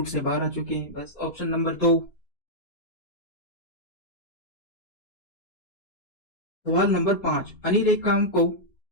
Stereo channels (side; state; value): right; late; 4.3 ms